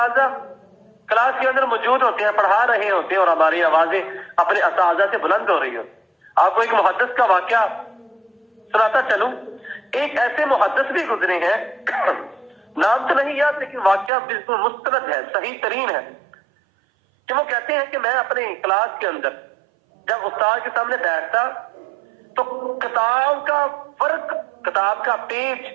کلاس کے اندر موجود ہوتے ہیں، پڑھا رہے ہوتے ہیں اور ہماری آوازیں اپنے اساتذہ سے بلند ہو رہی ہوتی۔ آپ کو ایک محدث کا واقعہ سناتا چلوں، ایک ایسے محدث بھی گزرے ہیں، نام تو نہیں یاد لیکن واقعہ بالکل مستند ہے، صحیح ترین ہے، کہ وہ کہتے ہیں کہ میں اپنے کلاس کے اندر جب استاد کے سامنے بیٹھتا تو کتاب کا فرق، کتاب کا پیج،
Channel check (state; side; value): drops out; left; at 14.1 s